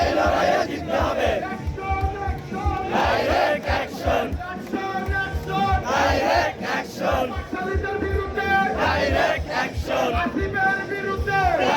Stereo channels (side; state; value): both; identical; correlation 1.00